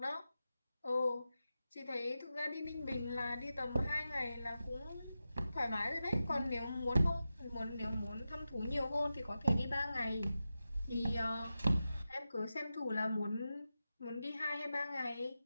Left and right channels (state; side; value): inverted; both; correlation -0.91